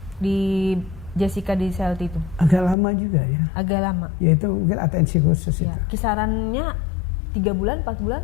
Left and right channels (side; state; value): right; drops out; at 2.8 s